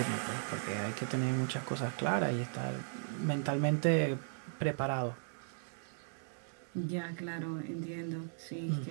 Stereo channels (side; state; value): left; silent; digital silence